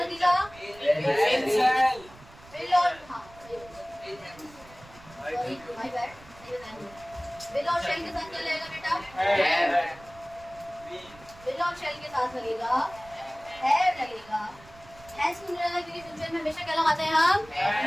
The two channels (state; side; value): noise; right; rumble, 22 dB below the sound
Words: विल और, हाँ भाई बैठ, विल और शेल के साथ क्या लगेगा बेटा? विल और शेल के साथ लगेगा हैव लगेगा। हैज क्यों लगेगा? क्योंकि फ्यूचर में हमेशा क्या लगाते हैं हम?